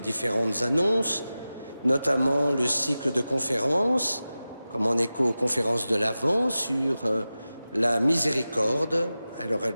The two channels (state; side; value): inverted; both; correlation -0.94